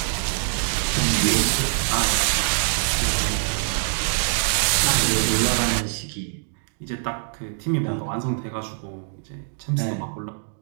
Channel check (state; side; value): silent; left; digital silence